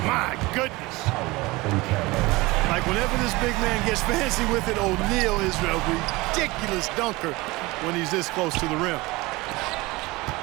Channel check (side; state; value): left; quieter; 21.9 dB